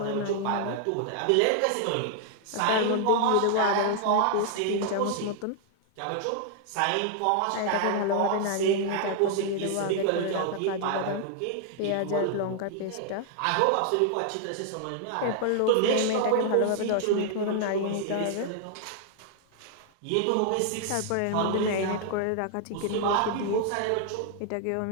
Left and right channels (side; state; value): both; different; correlation 0.00